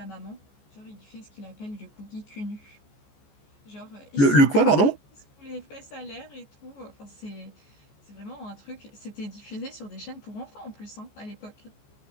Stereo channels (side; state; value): right; late; 14 ms